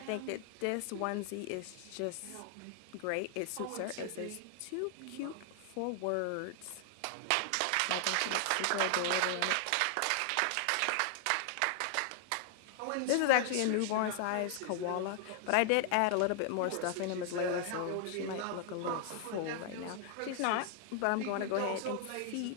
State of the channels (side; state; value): both; different; correlation 0.00